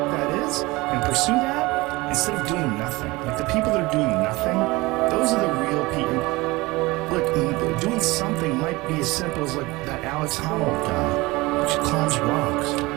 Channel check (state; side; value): quieter; left; 22.0 dB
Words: that is and pursue that instead of doing nothing. Like the people that are doing nothing, those are the real people. Look, doing something might be as simple as like that Alex Honnold guy, which climbs rocks,